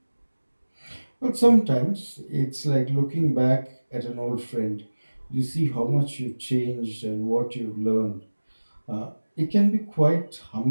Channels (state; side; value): inverted; both; correlation -1.00